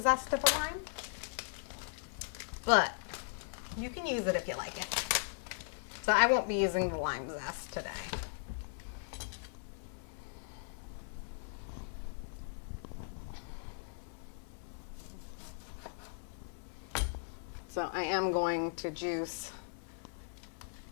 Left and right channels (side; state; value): right; silent; 52 dB below the other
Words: zest of a lime, but you can use it if you like it. So I won't be using the lime zest today. So I am going to juice